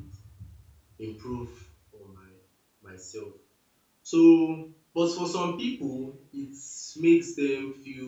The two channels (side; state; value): both; identical; correlation 1.00